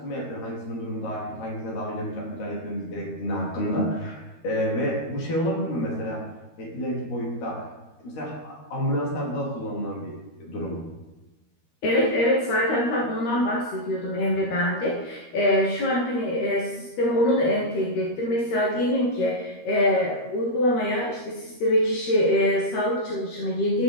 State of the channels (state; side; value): late; right; 13 ms